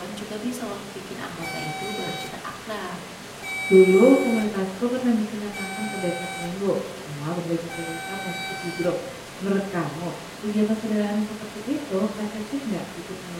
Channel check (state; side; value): identical; both; correlation 1.00